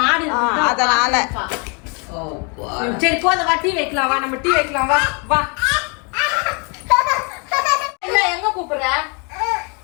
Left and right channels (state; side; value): quieter; right; 34.3 dB